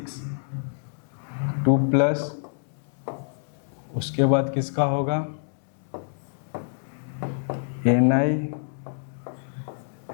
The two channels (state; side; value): silent; right; digital silence